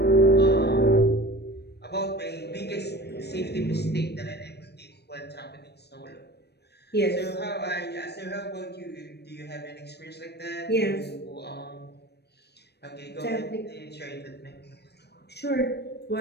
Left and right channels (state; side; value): late; right; 0.48 ms